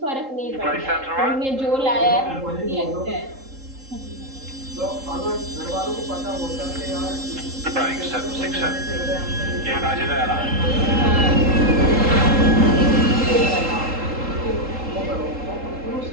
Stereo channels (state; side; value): late; left; 3.8 ms